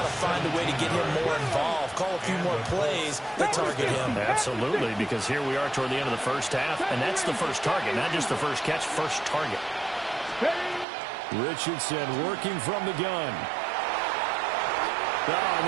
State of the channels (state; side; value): drops out; left; at 10.9 s